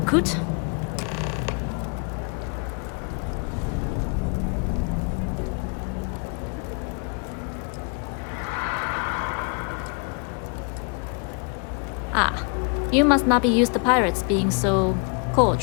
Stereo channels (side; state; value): right; quieter; 37.4 dB